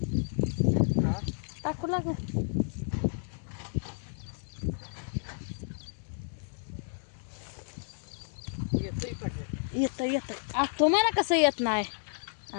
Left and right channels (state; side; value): silent; right; digital silence